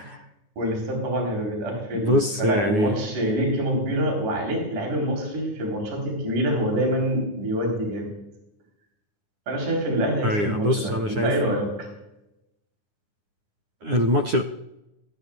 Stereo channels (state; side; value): late; left; 9.7 ms